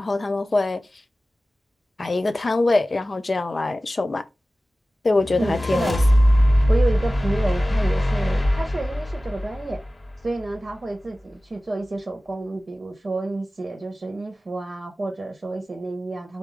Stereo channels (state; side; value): normal; both; correlation 0.96